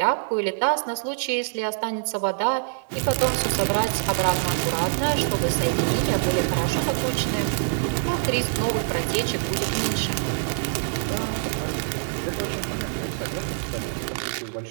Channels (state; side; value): silent; left; digital silence